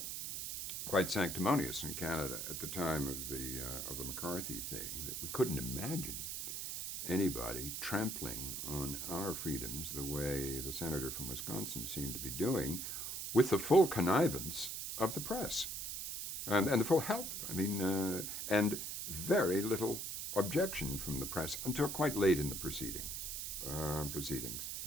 quite sanctimonious in Canada at the time of the McCarthy thing, that we couldn't imagine anybody trampling on our freedoms the way the senator from Wisconsin seemed to be doing, with the full connivance of the press and the full help. I mean, and very little objection from the press until quite late in the proceedings.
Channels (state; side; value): noise; right; hiss, 4 dB below the sound